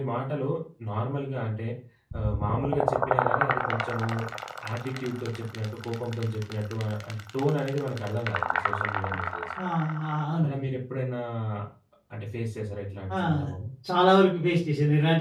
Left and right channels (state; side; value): identical; both; correlation 1.00